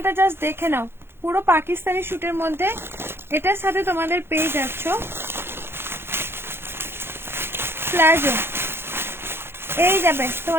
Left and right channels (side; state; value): left; late; 0.11 ms